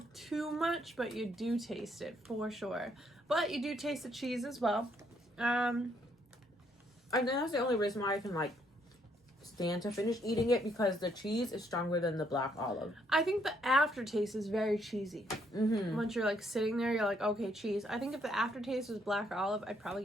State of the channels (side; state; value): both; normal; correlation 0.71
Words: too much, but you do taste it for sure. But you do taste the cheese as well. And that's the only reason why I can, like, stand to finish eating it, because the cheese is stronger than the black olive. I think the aftertaste is very cheesy. Mm-hmm. Once you're, like, sitting there, you're like, okay, cheese. I think if the aftertaste was black olive, I'd probably